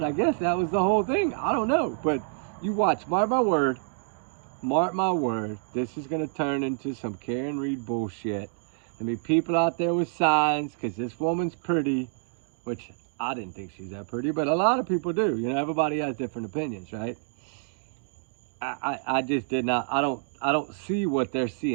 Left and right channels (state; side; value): silent; left; digital silence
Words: I guess that was the whole thing. I don't know. But you watch, mark my word, this is going to turn into some Karen Reed bullshit. There'll be people out there with signs because this woman's pretty, which I didn't think she's that pretty, but a lot of people do. You know, everybody has different opinions, right? I just did not, I don't see what they're